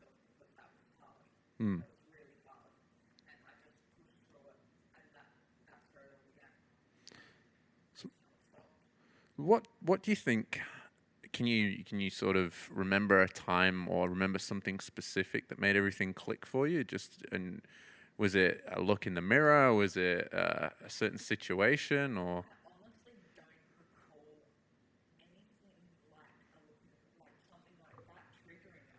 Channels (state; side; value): identical; both; correlation 1.00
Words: because that was hard. That was really hard. And I just pushed through it. And that's where it all began. And I just haven't stopped. What do you think? Can you sort of remember a time or remember something specific that made everything click for you? And was it a look in the mirror? Was it a certain situation? Or I honestly don't recall anything like a look in the, like something like that triggering